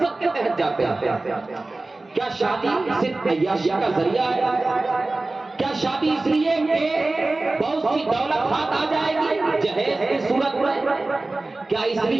کے تحت جاتے ہیں؟ کیا شادی صرف عیاشی کا ذریعہ ہے؟ کیا شادی اس لیے کہ بہت سی دولت ہاتھ آ جائے گی جہیز کی صورت میں؟ کیا اس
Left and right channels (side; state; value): left; quieter; 3.1 dB